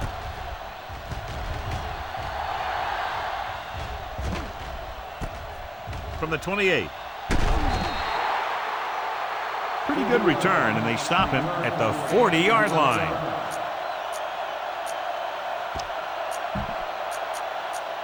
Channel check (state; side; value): identical; both; correlation 1.00